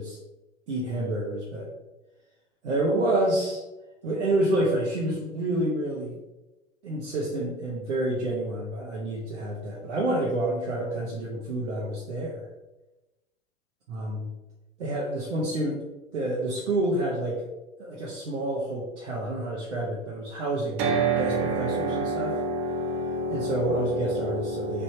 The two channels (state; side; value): normal; both; correlation 0.34